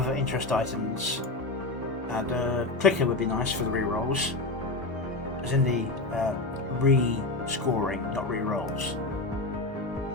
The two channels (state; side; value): quieter; right; 3.0 dB